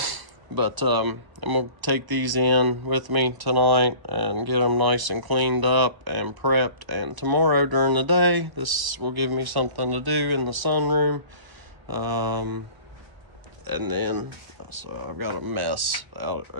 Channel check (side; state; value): left; late; 1.1 ms